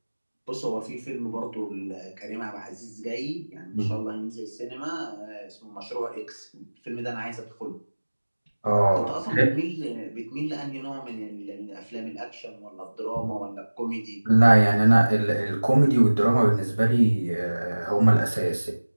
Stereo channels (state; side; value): inverted; both; correlation -1.00